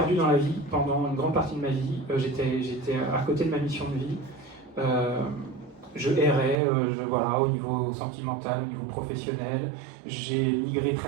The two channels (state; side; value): drops out; left; at 6.6 s